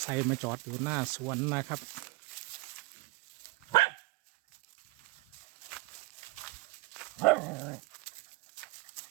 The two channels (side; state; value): left; quieter; 23.2 dB